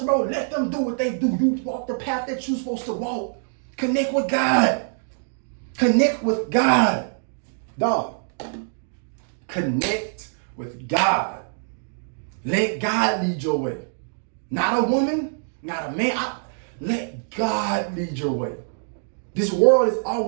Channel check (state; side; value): silent; left; digital silence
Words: bro, let them do what they do. You walk the path that you're supposed to walk. Connect with God. Connect with God. Dog. Connect with God. Let God lead your way. Not a woman, not a man. Let God lead your way. This world is